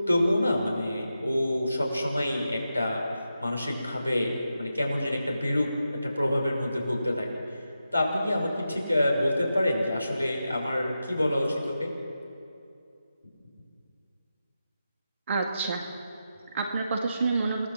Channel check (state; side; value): inverted; both; correlation -0.89